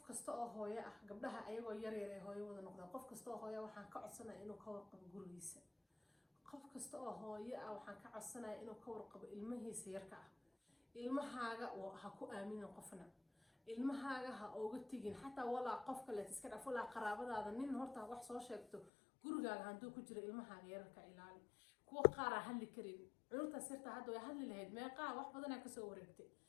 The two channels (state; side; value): drops out; right; at 18.9 s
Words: kasta oo hooyo ah gabdhaha ayagoo yar yar ay hooyo wada noqdaan qof kasta oo hooyo waxaan ka codsanayaa inuu ka warqabo gurigiisa qof kasta oo hooyo ah waxaan ka codsanayaa inuu ka warqabo ilmahiisa yarka ah ilmahaaga ha ku aaminin qofna ilmahaaga ha uga tigin xataa walaa qof kale iska dhaf walaa qaraabadaada nin horta wax soo sheegto gurigaaga haduu ku jiro ilmahaaga yarka ilaali kuwa qaar hadli karin cunta sirta hadda way hadli lahayd meeqa wax badan ka soo wareegtay